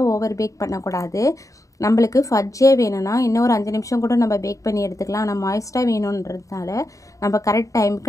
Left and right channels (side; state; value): right; late; 0.16 ms